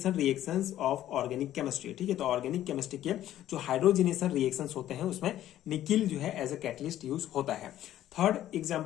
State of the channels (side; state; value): right; quieter; 12.7 dB